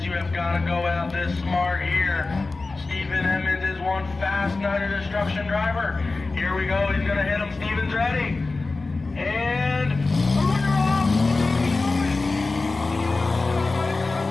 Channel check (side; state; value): right; quieter; 3.6 dB